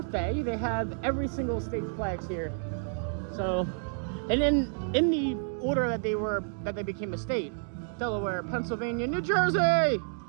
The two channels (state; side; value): silent; left; digital silence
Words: they have every single state's flags here. So, and then in the order that they became a state: Delaware, Pennsylvania, New Jersey,